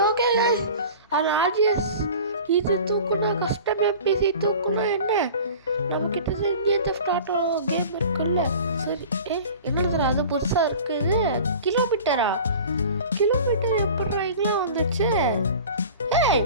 ஓகே guys. அந்த ஆர்ஜிஎஸ் இது தூக்குனா கஸ்டம் எம்பிசி தூக்குனா என்ன நம்மக்கிட்ட இந்தியன் தெஃப்ட் ஆட்டோ கேம் இருக்குல்ல. சரி என்னது அது புதுசாக இருக்குது. கிலோமீட்டர் எப்படிலாம் வந்துச்சு?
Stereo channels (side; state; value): both; inverted; correlation -0.40